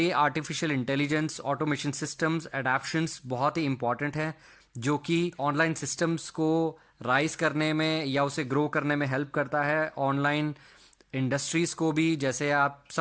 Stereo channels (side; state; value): both; identical; correlation 1.00